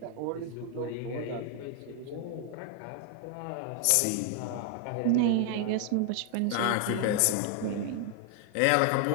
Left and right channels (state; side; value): different; both; correlation 0.00